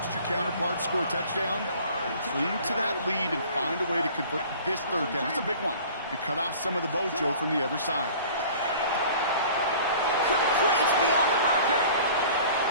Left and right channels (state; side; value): inverted; both; correlation -0.46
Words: your counterpart score a touchdown. Cling to that lead and find a way to convert this 3rd down. It's a big one. And cut off some of the mojo from the other side. Complete beyond the marker.